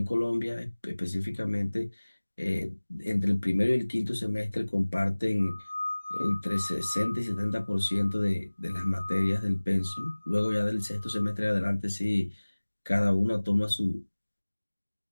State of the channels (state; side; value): inverted; both; correlation -1.00